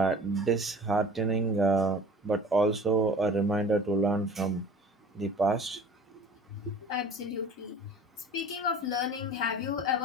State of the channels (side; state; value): both; normal; correlation 0.44